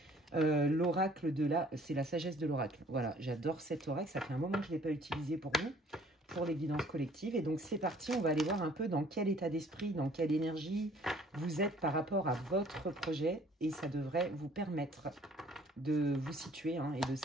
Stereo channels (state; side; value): normal; both; correlation 0.56